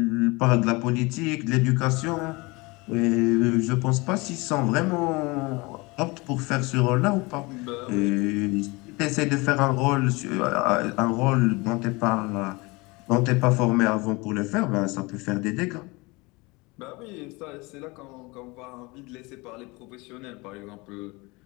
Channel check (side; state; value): right; quieter; 25.0 dB